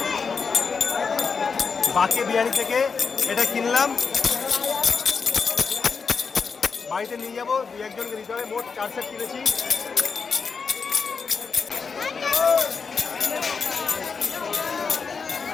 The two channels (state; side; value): quieter; right; 5.4 dB